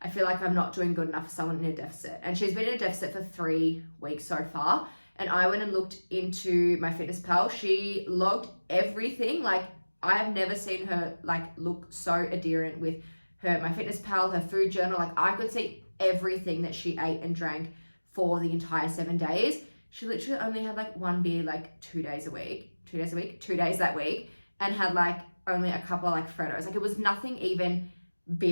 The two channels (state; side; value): inverted; both; correlation -1.00